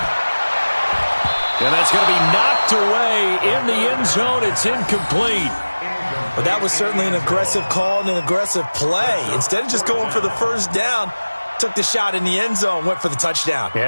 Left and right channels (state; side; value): inverted; both; correlation -1.00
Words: And that's going to be knocked away in the end zone. It's incomplete. But that was certainly an aggressive call and an aggressive play. Instead of just going for the first down, took the shot in the end zone, went for the touchdown.